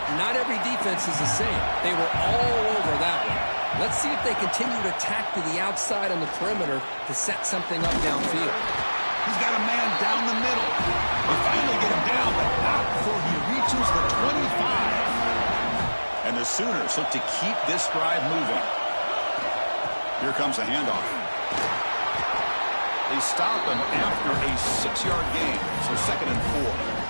not every defense is the same. They were all over that one. Let's see if they continue to attack to the outside on the perimeter to set something up downfield. He's got a man down the middle. They finally get him down, but not before he reaches the 25. And the Sooners look to keep this drive moving. Here comes the handoff. They stop him after a 6-yard gain, so 2nd and 4.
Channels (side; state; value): both; inverted; correlation -1.00